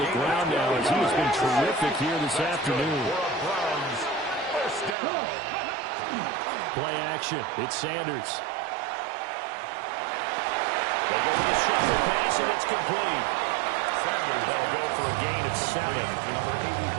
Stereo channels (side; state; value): left; drops out; at 5.0 s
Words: ground now as he has been terrific here this afternoon. Play action. It's Sanders. They go with a shuffle pass, and it's complete. They'll go for a gain of 7.